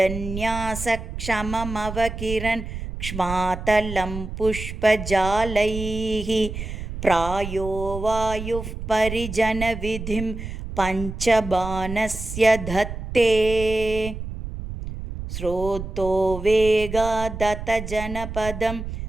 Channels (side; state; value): right; noise; rumble, 8 dB below the sound